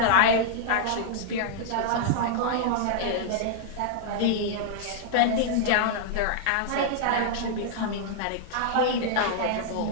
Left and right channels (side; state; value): both; different; correlation -0.01